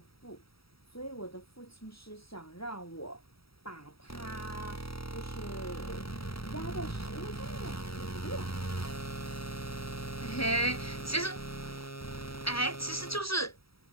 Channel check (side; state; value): right; late; 0.76 ms